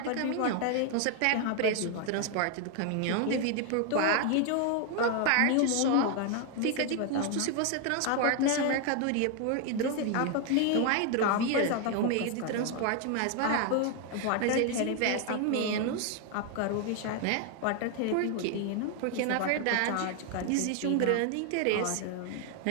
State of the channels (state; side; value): different; both; correlation 0.00